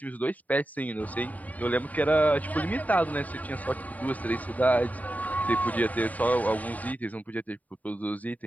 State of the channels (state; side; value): late; right; 0.073 ms